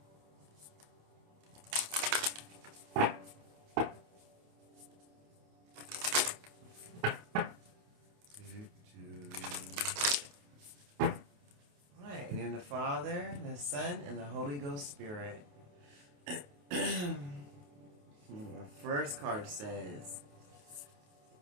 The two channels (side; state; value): left; late; 28 ms